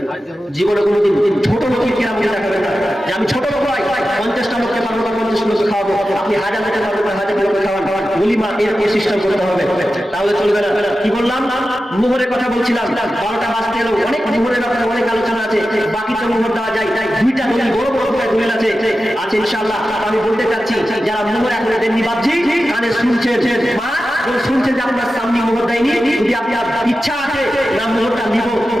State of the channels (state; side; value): normal; both; correlation 0.92